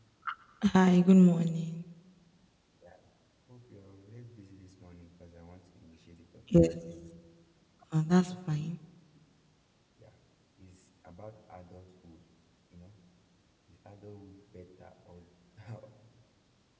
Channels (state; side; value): identical; both; correlation 1.00